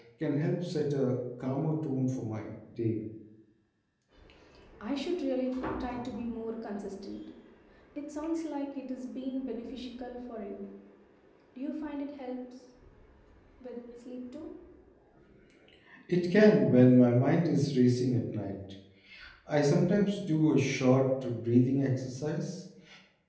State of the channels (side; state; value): both; identical; correlation 1.00